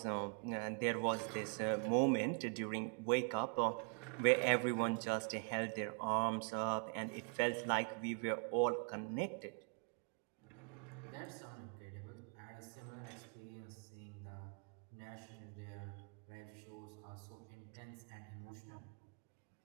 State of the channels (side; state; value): left; quieter; 38.1 dB